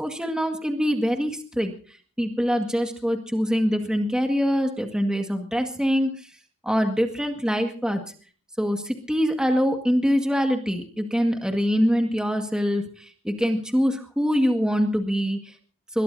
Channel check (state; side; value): normal; both; correlation 0.94